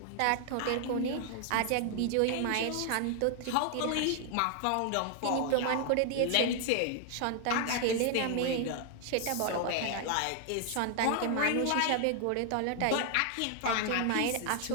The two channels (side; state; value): both; different; correlation 0.00